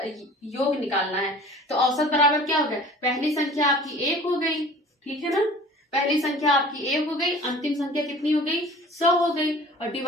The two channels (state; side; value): normal; both; correlation 0.45